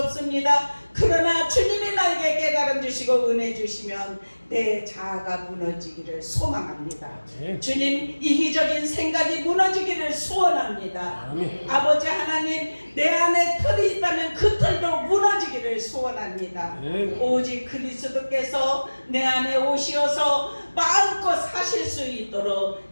그러나 주님이 나에게 깨달음 주시고 은혜 주시면 내 자아가 무너지기를 소망합니다. 주님 이기적인 생각이 무너지기를 소원합니다. 아버지 하나님 내 안에 틀이 있다면 그 틀도 무너지기를 소원합니다. 오직 그리스도께서 내 안에 오시어서 마음껏 사실 수 있도록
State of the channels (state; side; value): inverted; both; correlation -1.00